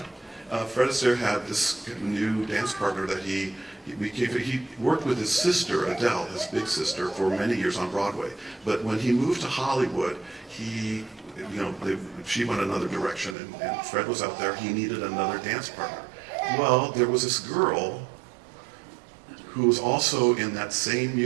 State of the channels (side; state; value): left; drops out; at 13.4 s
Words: Yeah. Fred Astaire had this new dance partner that he worked with his sister, Adele, his big sister, for many years on Broadway. But when he moved to Hollywood, she went another direction, and Fred was out there. He needed another dance partner. Well, there was this girl who was also in that same